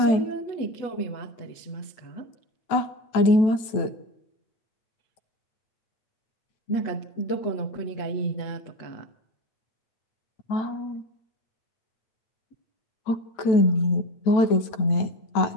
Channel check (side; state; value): right; late; 9.1 ms